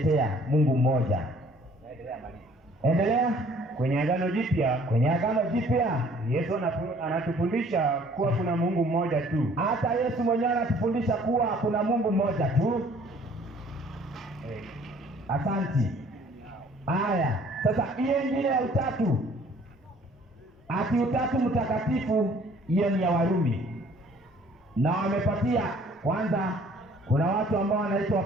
Mungu mmoja. Endelea. Kwenye Agano Jipya Yesu anatufundisha kuwa kuna Mungu mmoja tu. Hata Yesu mwenyewe anatufundisha kuwa kuna Mungu mmoja tu. Asanti. Haya, sasa hiyo ingine ya utatu, ati utatu mtakatifu, hiyo ni ya Warumi, na wamepatia kwanza. Kuna watu ambao wanaitwa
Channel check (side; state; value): both; normal; correlation 0.56